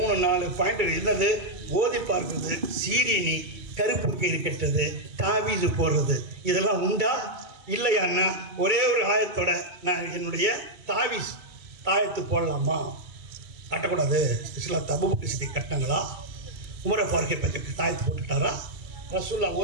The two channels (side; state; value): left; late; 2.3 ms